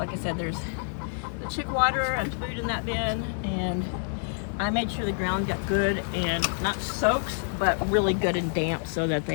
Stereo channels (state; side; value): silent; right; digital silence